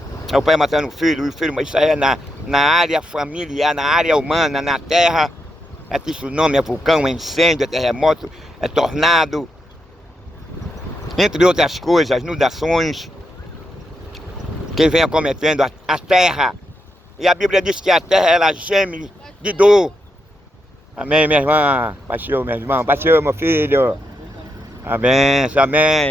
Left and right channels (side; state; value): both; normal; correlation 0.83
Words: É o pai matando o filho, mas isso aí é na área familiar, na área humana, na terra. É tsunami, é vulcão, é incêndio, é terremoto, é tornado. Entre outras coisas, inundações que vem acometendo a terra. E a Bíblia diz que a terra, ela geme de dor. Amém, minha irmã? Baixou, meu irmão. Baixou, meu filho. Amém, amém.